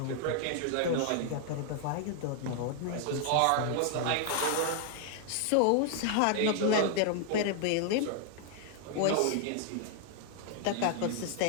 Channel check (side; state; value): both; different; correlation 0.00